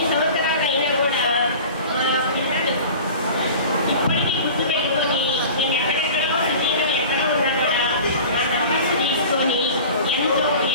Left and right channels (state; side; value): inverted; both; correlation -0.39